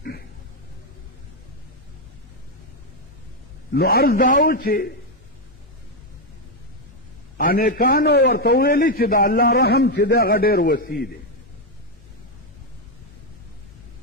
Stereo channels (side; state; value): both; normal; correlation 0.04